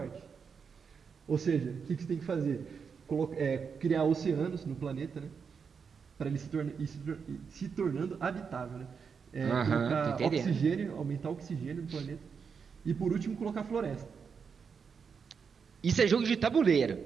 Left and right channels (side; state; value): left; quieter; 6.1 dB